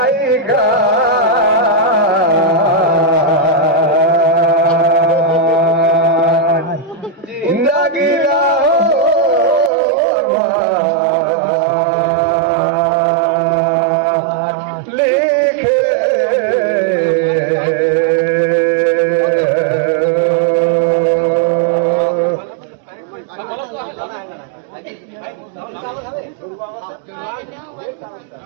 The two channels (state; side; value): drops out; left; at 9.7 s